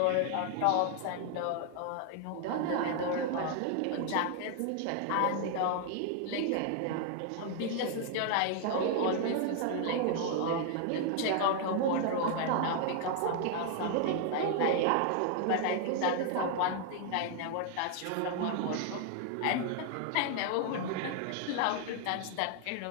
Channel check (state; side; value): different; both; correlation 0.00